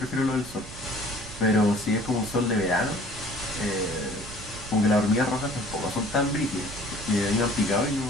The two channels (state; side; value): noise; right; rumble, 15 dB below the sound